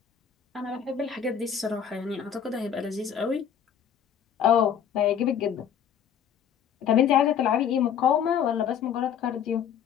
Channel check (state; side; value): quieter; right; 8.4 dB